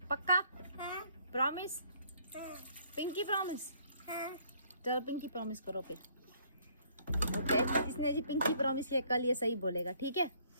पक्का? हाँ प्रॉमिस? हाँ पिंकी प्रॉमिस? हाँ। चलो पिंकी प्रॉमिस करो फिर। ओके, इसने जी पिंकी प्रॉमिस किया, कल ये सही बोलेगा, ठीक है?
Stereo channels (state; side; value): inverted; both; correlation -0.63